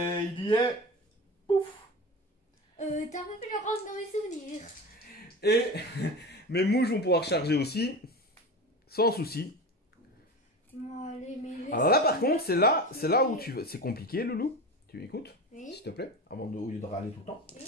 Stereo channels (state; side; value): normal; both; correlation 0.28